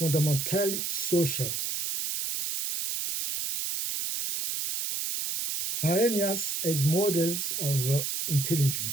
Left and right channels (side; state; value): right; noise; hiss, 2 dB below the sound